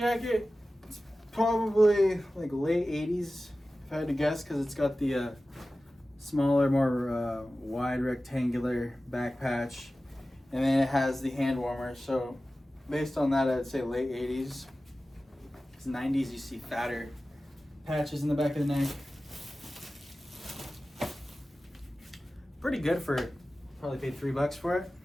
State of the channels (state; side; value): normal; both; correlation 0.95